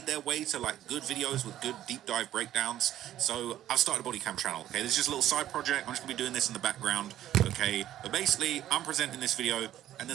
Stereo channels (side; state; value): left; quieter; 12.5 dB